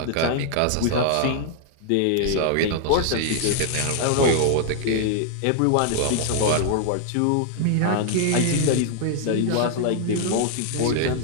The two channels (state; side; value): different; both; correlation 0.00